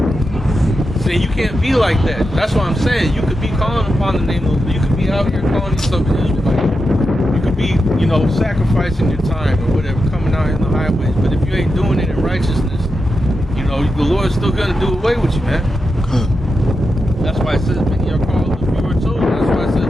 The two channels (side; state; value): both; normal; correlation 0.88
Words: See, you can't be like that. That's what I'm saying. You could be calling upon the name of, you could be out here calling yourself an Israelite. You could be, you know, sacrificing your time or whatever, coming out in the highways. But if you ain't doing it in righteousness, you know, the Lord's still gonna do away with you, man. That's why it says many are called, a few are chosen. That's why it says